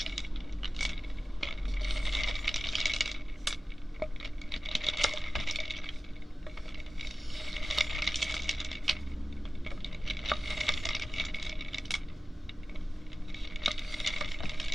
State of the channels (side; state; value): both; normal; correlation 0.96